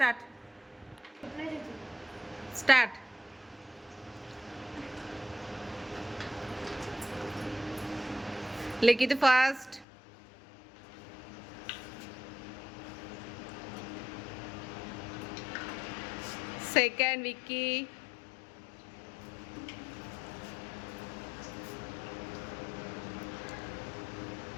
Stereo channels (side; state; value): right; drops out; at 9.9 s